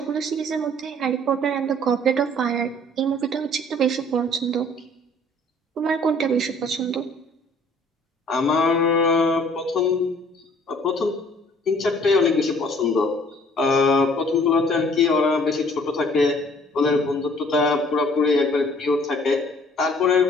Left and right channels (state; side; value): normal; both; correlation 0.56